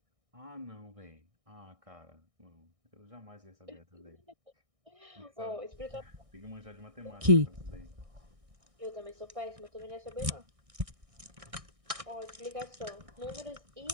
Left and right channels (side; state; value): left; late; 1.6 ms